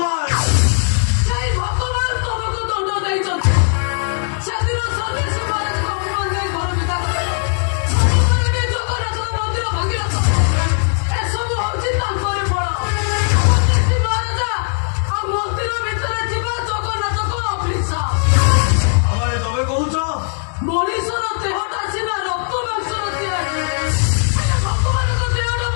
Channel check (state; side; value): silent; right; 63 dB below the other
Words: ସେଇ ଭଗବାନ ତମକୁ ଦଣ୍ଡ ଦେଇଛନ୍ତି। ସେଦିନ ସ୍ୱଦେଶୀ ମହାରାଜଙ୍କ ଅପମାନ ଦେଇ ଘର ବିଦା କଲେ। ସବୁବେଳେ ବି ଜଗନ୍ନାଥଙ୍କ ମନ୍ଦିର ଭାଙ୍ଗିଲ ତ। ଏସବୁ ହଉଛି ତାଙ୍କରି ଫଳ। ସ୍ୱଦେଶୀ ମହାରାଜା ଆଉ ମନ୍ଦିର ଭିତରେ ଥିବା ଜଗନ୍ନାଥଙ୍କ ଅଭିଶାପ। ଆରେ ତମେ କହୁଛ ମଣିଷର ଦେହଟା ସିନା ରକ୍ତ ମାଂସର ତିଆରି,